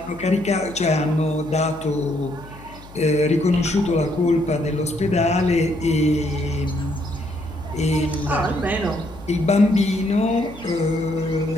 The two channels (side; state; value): left; noise; hum, 19 dB below the sound